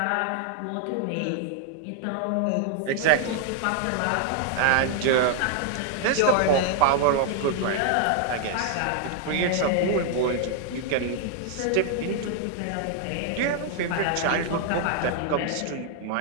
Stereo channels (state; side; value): different; both; correlation 0.00